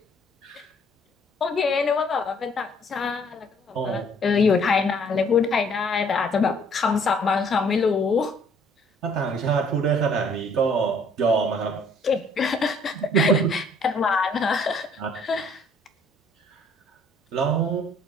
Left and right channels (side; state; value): both; normal; correlation 0.60